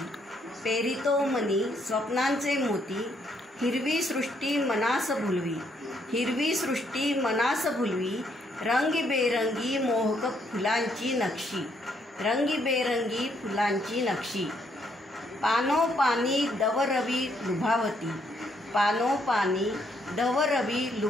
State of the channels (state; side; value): normal; both; correlation 0.72